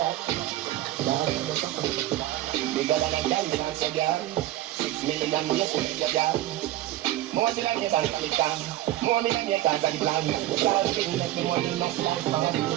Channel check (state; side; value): quieter; left; 14.6 dB